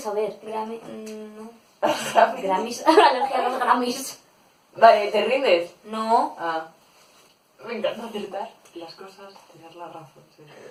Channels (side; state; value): both; identical; correlation 1.00